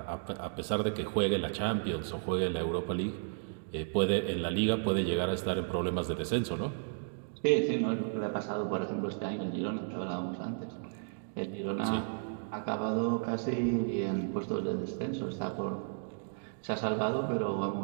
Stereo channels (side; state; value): left; silent; digital silence